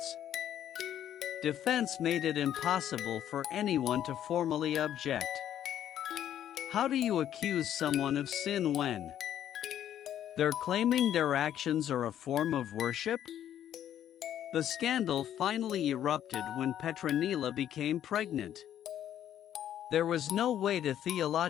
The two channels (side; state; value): right; quieter; 10.8 dB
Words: defense made it impossible for anyone to formally object. How do you accuse someone of sin when they're claiming their actions are a form of worship? The scandal finally erupted when Petronilla became pregnant. There was no way to